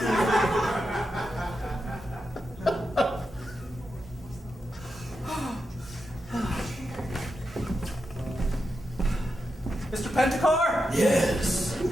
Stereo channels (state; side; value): normal; both; correlation 0.87